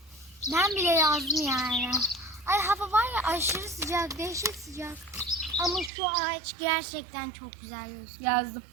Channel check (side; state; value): left; drops out; at 5.9 s